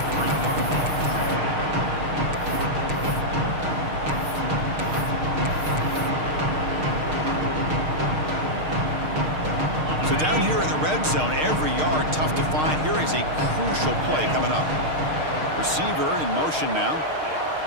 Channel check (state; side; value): late; left; 6.5 ms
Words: So down here in the red zone, every yard tough to find. Here is a crucial play coming up. Receiver in motion now.